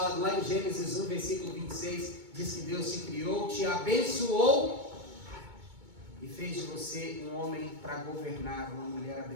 Lá em Gênesis 1, versículo 26, diz que Deus te criou, te abençoou e fez de você um homem para governar, uma mulher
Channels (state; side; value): late; left; 2.2 ms